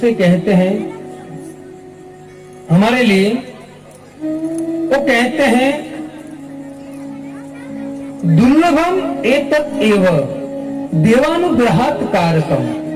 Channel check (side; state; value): both; identical; correlation 1.00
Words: कहते हैं हमारे लिए। वो कहते हैं दुर्लभम एतत् एव देवानुग्रहात् कारकम।